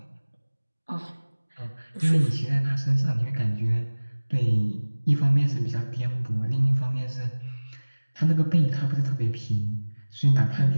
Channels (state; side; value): inverted; both; correlation -1.00